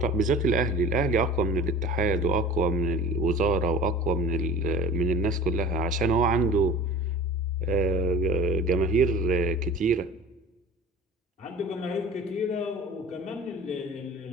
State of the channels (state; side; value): normal; both; correlation 0.40